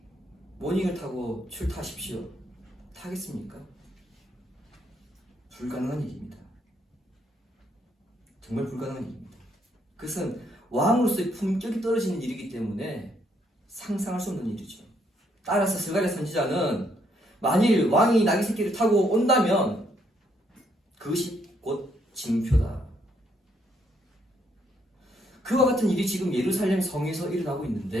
모닝을 타고 출타하십시오. 타겠습니까? 불가능한 일입니다. 정말 불가능한 일입니다. 그것은 왕으로서의 품격이 떨어지는 일이기 때문에 상상할 수 없는 일이죠. 따라서 스가랴 선지자는 만일 왕이 나귀 새끼를 타고 온다면 그것이 곧 징표다. 그와 같은 일이 지금 예루살렘 성에서 일어나고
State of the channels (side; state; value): both; normal; correlation 0.72